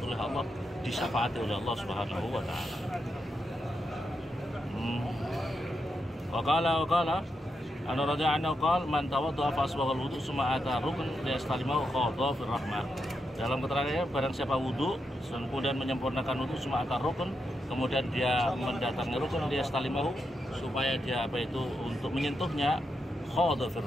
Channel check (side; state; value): both; normal; correlation 0.84